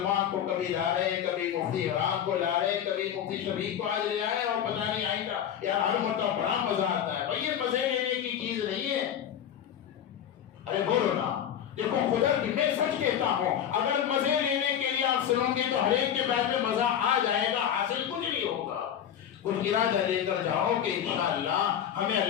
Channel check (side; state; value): right; quieter; 9.5 dB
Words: کو کبھی لا رہے، کبھی مفتی عمران کو لا رہے، کبھی مفتی شفیق کو آج لے آئے، اور پتہ نہیں آئندہ یار ہر مرتبہ بڑا مزہ آتا ہے۔ بھائی یہ مزے لینے کی چیز نہیں ہے، ارے بولو نا، دیکھو خدا کی میں سچ کہتا ہوں، اگر مزے لینے کے لیے آپ سنو گے تو ہر ایک کے بعد میں مزہ آ جائے گا، حاصل کچھ نہیں ہوگا۔ کچھ ارادہ لے کر جاؤ کہ انشاءاللہ ہمیں